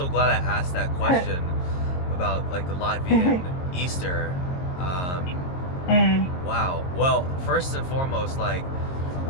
glad I asked that question about the Latvian Easter. Wow. Well, first and foremost,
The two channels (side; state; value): right; late; 22 ms